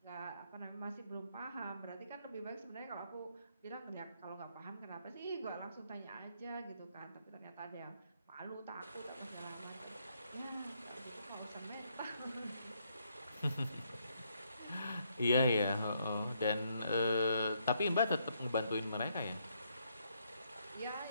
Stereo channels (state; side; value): inverted; both; correlation -0.74